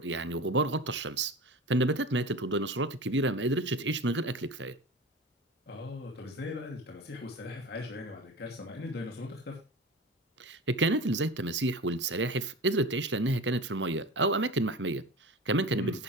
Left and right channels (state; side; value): normal; both; correlation 0.32